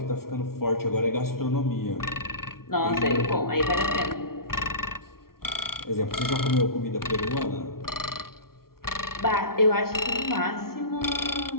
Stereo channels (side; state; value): right; late; 0.93 ms